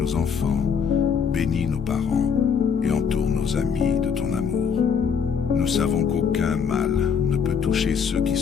enfants, bénis nos parents et entoure nos amis de ton amour. Nous savons qu'aucun mal ne peut toucher ceux qui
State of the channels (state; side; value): quieter; right; 6.6 dB